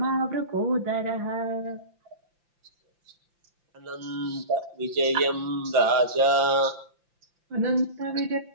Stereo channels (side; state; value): left; late; 5.8 ms